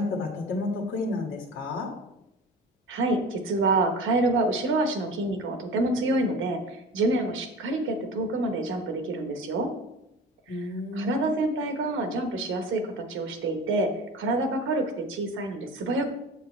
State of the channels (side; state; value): both; normal; correlation 0.36